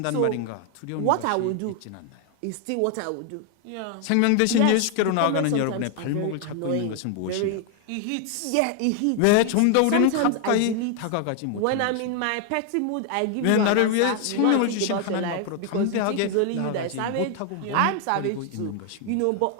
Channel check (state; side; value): different; both; correlation 0.00